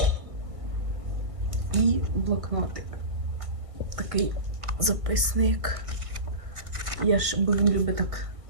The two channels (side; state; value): left; late; 1.5 ms